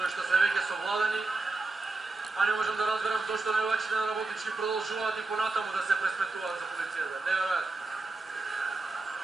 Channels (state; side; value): quieter; left; 3.4 dB